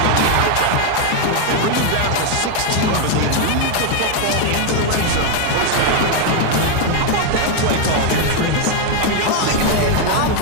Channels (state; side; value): different; both; correlation 0.01